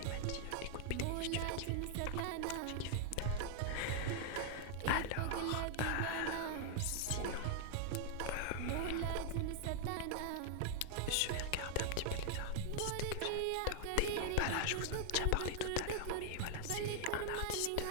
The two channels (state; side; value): different; both; correlation 0.00